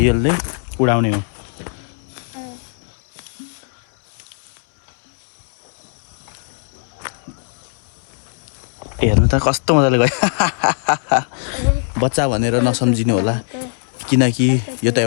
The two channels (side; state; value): right; silent; 66 dB below the other